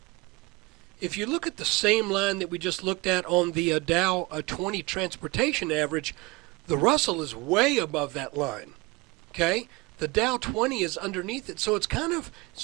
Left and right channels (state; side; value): quieter; left; 23.8 dB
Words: If you look at the same line that we just looked at on the Dow 20 Transportation Average, the Russell is way above that line. Okay? The Dow 20 is underneath it. So it's